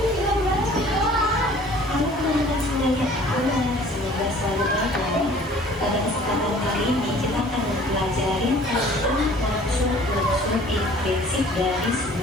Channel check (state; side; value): normal; both; correlation 0.51